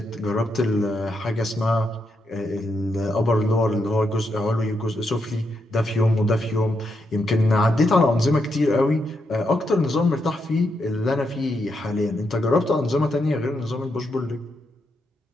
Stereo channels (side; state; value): both; normal; correlation 0.81